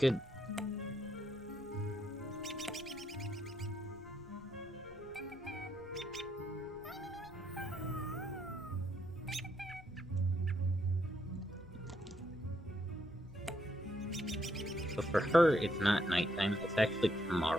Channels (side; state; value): left; noise; rumble, 22 dB below the sound